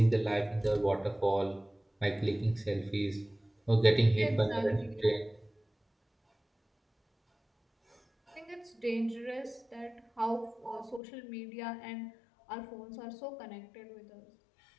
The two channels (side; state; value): right; drops out; at 11.0 s